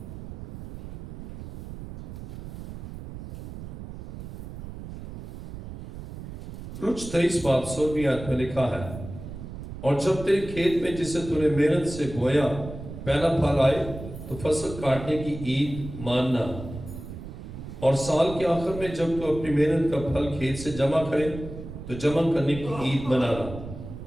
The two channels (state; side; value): noise; right; rumble, 11 dB below the sound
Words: خروج 23 باب 16ویں آیت میں لکھا ہے، اور جب تیرے کھیت میں جسے تو نے محنت سے بویا پہلا پھل آئے تو فصل کاٹنے کی عید ماننا، اور سال کے آخر میں جب تو اپنی محنت کا پھل کھیت سے جمع کرے تو جمع کرنے کی عید منانا،